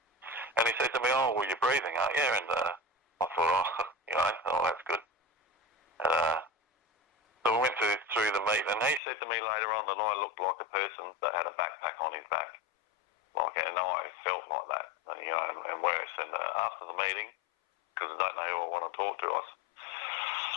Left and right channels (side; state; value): right; drops out; at 9.0 s